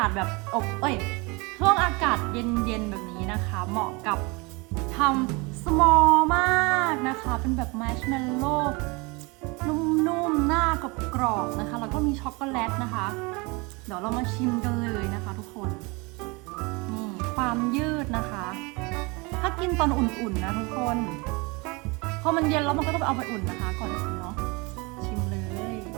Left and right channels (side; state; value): left; quieter; 27.2 dB